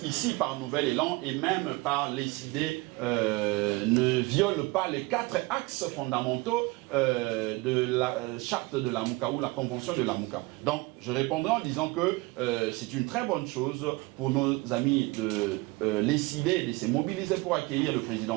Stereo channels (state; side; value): quieter; left; 23.3 dB